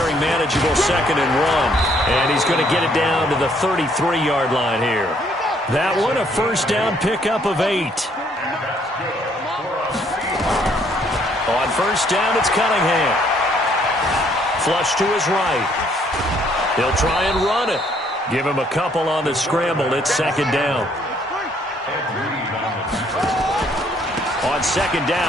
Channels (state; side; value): normal; both; correlation 0.66